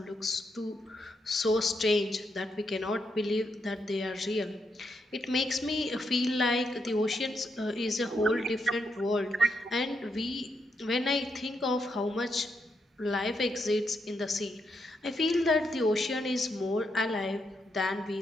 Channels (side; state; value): both; normal; correlation 0.81